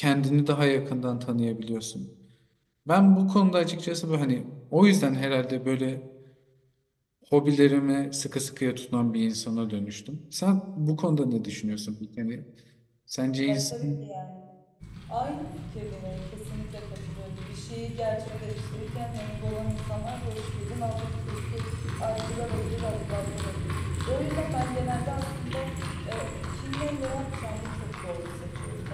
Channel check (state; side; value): identical; both; correlation 1.00